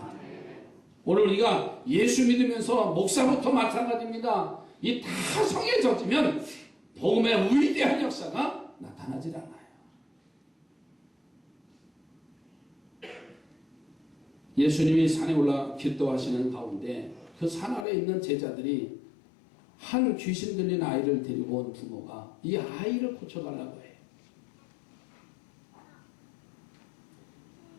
오늘 우리가 예수 믿으면서 목사부터 마찬가지입니다. 이 타성에 젖으면 복음의 위대한 역사가 나타나질 않아요. 예수님이 산에 올라 기도하시는 가운데 그 산 아래에 있는 제자들이 한 귀신 들린 아이를 데리고 온 부모가 이 아이를 고쳐달라고 해요.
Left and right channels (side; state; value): right; drops out; at 17.9 s